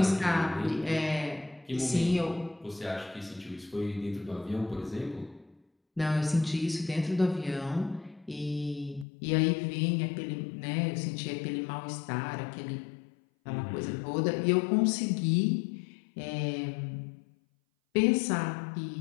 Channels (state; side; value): drops out; right; at 9.1 s